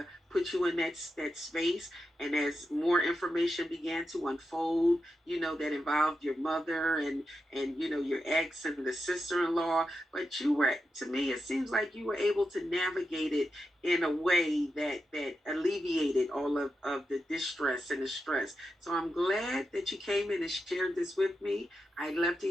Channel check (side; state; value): both; normal; correlation 0.88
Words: put you in that space. And as more information began to unfold, that involved your mother and your ex and the sister-in-law, but you were, to me, it seems like you were able to navigate it in a way that alleviated all of the distress and the stress. So I'm glad that you came in and shared this with me. I'd love